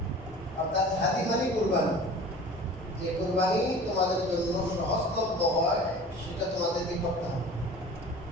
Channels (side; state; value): both; normal; correlation 0.41